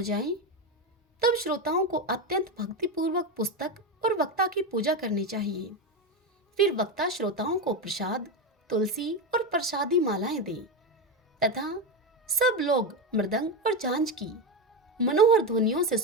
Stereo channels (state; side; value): normal; both; correlation 0.14